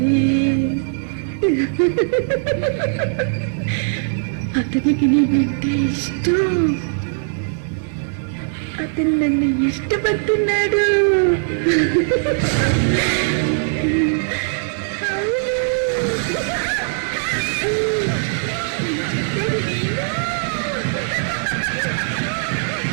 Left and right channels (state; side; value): silent; left; digital silence